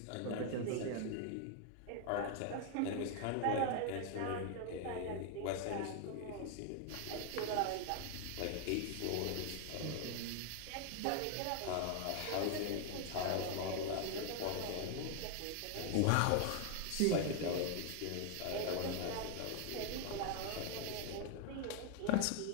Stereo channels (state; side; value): different; both; correlation 0.00